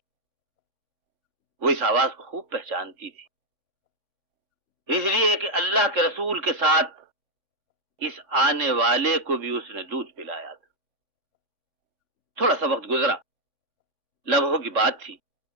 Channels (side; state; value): left; late; 3.5 ms